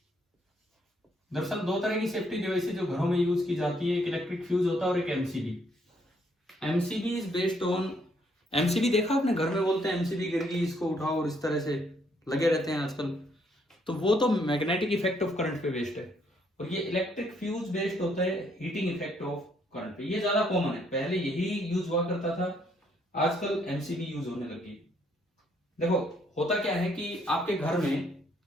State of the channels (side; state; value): both; normal; correlation 0.70